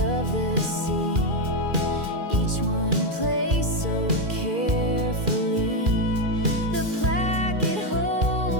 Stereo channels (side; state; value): left; late; 2.4 ms